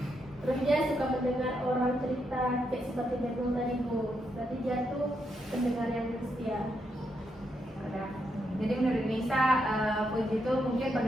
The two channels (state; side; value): normal; both; correlation 0.81